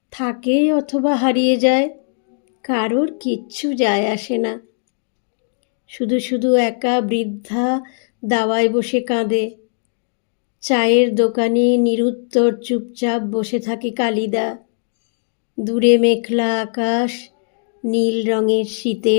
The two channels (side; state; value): right; silent; digital silence